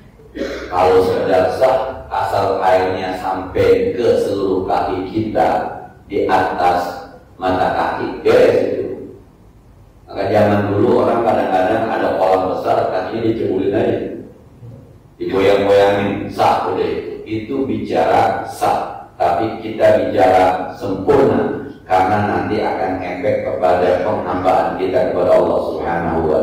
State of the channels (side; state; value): both; identical; correlation 1.00